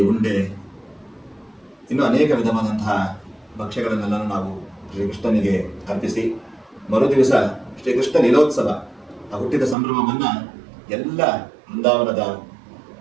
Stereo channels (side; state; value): left; drops out; at 9.8 s